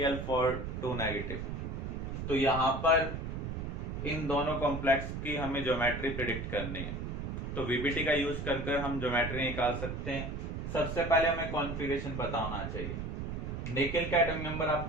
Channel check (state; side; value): noise; right; rumble, 5 dB below the sound